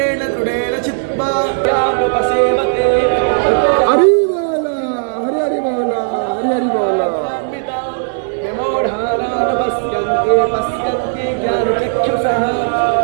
दृढेन चित्वा यामुपसेवते। हरि बोला, हरि हरि बोला, हरि हरि बोला। पश्यन्ते पश्यन्ते ज्ञानचक्षुषः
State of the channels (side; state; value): left; silent; 65 dB below the other